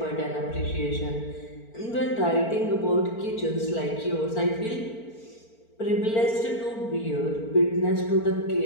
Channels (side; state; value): right; late; 4.4 ms